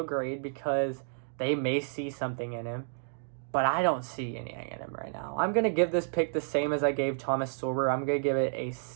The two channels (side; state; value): left; silent; digital silence